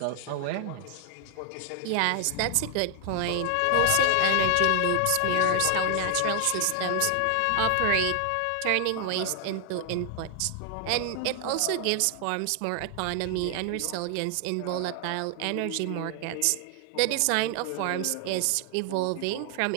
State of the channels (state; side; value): different; both; correlation 0.00